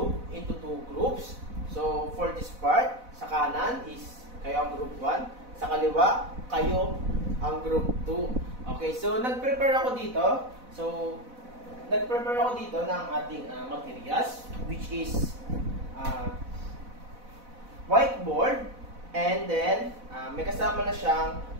into two groups. So for this part, sa kanan is kayo ang group 1, sa kaliwa, kayo ang group 2. Okay, so nag-prepare ako dito. So, nag-prepare ako dito ng ating materials, which is whiteboard, and then may kasama na siyang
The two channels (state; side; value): late; left; 4.0 ms